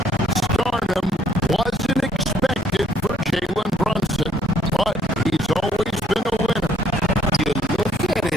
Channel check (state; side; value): normal; both; correlation 0.65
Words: Stardom wasn't expected for Jalen Brunson, but he's always been a winner. You look at